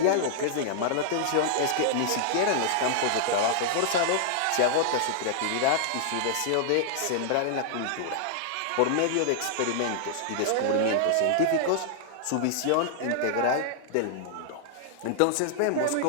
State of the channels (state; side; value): different; both; correlation -0.01